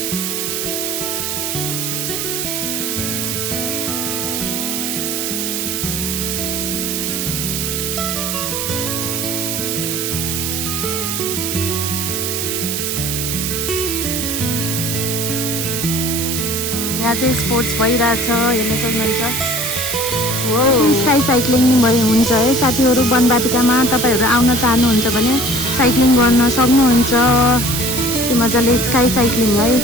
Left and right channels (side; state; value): right; noise; hiss, 2 dB below the sound